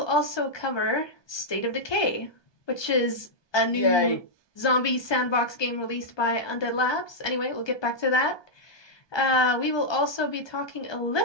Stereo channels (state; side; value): late; right; 1.2 ms